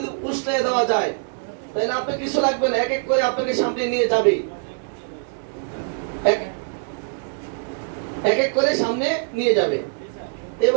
উষ্ণে দেওয়া যায়, তাহলে আপনার কিছু লাগবে না, এক এক করে আপনাকে সামনে নিয়ে যাবে, এক এক করে সামনে নিয়ে যাবে।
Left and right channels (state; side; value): silent; left; digital silence